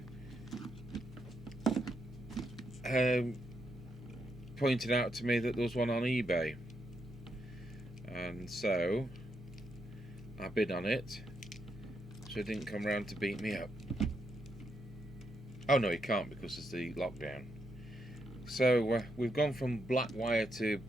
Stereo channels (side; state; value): both; normal; correlation 0.80